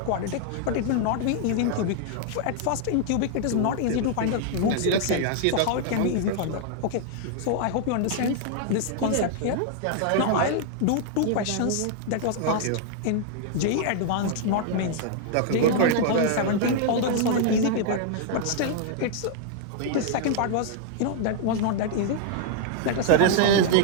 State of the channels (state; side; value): different; both; correlation -0.01